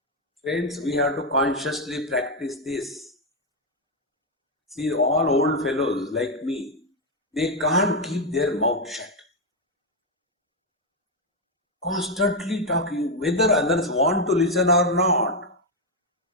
Friends, we have to consciously practice this. See, all old fellows like me, they can't keep their mouth shut. Constantly talking, whether others want to listen or not.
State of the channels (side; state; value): both; normal; correlation 0.03